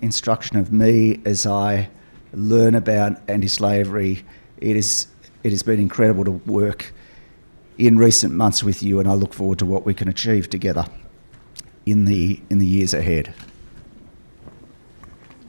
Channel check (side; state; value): both; inverted; correlation -1.00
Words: instruction of me as I learn about anti-slavery. It has been incredible to work in recent months with you, and I look forward to what we can achieve together in the years ahead.